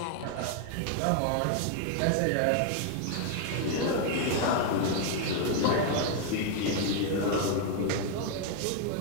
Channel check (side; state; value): both; different; correlation 0.00